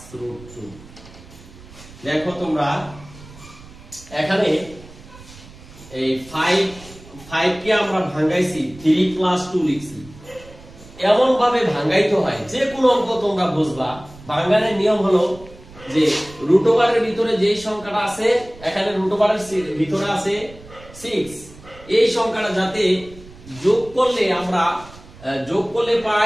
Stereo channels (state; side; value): noise; right; rumble, 20 dB below the sound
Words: root 2। দেখো তোমরা এখানে এই 5 কে আমরা ভাঙাইছি 3 plus 2 লিখছি। এমন ভাবে ভাঙাইতে হয় যে কোনো অঙ্ক তোমরা বুঝবা, ভাঙানোর নিয়ম হলো যে রুট ওভারের ভিতরে যেই সংখ্যাটা আছে, এখানে রুট ওভারের ভিতরে আছে 6, এই সংখ্যাটা যাতে যোগ করলে আমরা যোগ করলে